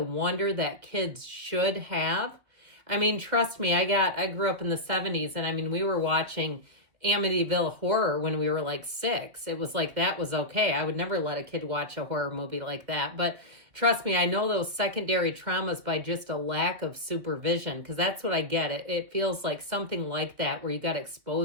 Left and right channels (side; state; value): left; late; 2.1 ms